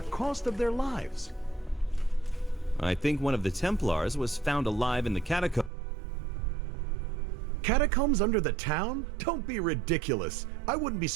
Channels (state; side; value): drops out; left; at 5.7 s